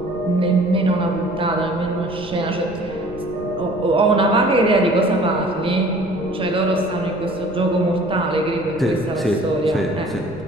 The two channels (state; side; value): noise; right; rumble, 18 dB below the sound